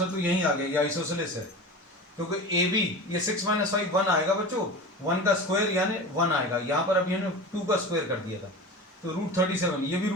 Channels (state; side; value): normal; both; correlation 0.32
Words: तो यही आ गया, ये आइसोसेलेस है, क्योंकि ए बी ये 6 माइनस 5 1 आएगा बच्चों, 1 का स्क्वायर यानी 1 आएगा, यहाँ पर अभी हमने 2 का स्क्वायर कर दिया था, तो √37 ये भी